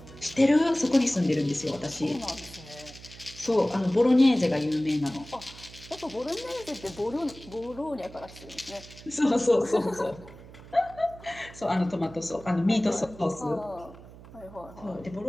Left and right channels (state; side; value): noise; right; hum, 18 dB below the sound